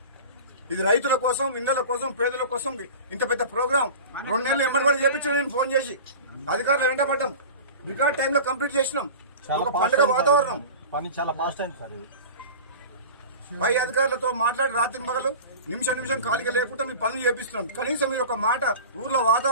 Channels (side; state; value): both; inverted; correlation -0.35